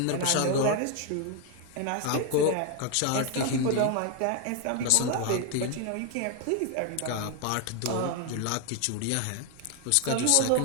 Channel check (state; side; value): different; both; correlation 0.01